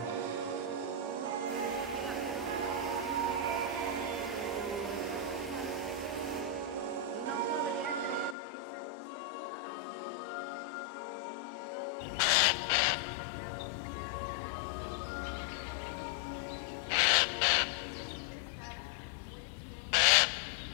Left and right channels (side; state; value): right; drops out; at 8.3 s